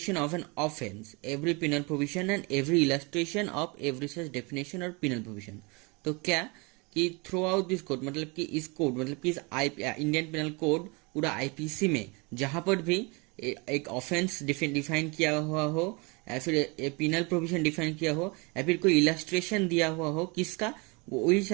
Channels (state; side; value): quieter; left; 28.9 dB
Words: of an offense, every penal provision and every illustration of every such definition or penal provision। तो क्या कि through out this code मतलब कि इस कोड मतलब कि इस इंडियन पिनल कोड पूरा आईपीसी में जहां पर भी एक ऑफेंस डिफाइन किया हुआ हो या फिर पिनल प्रोविजन डिफाइन किया हो या फिर कोई इलस्ट्रेशन दिया हुआ हो किसका, वही